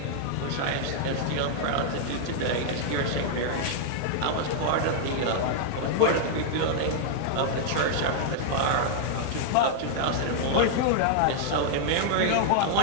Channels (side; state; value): both; different; correlation -0.01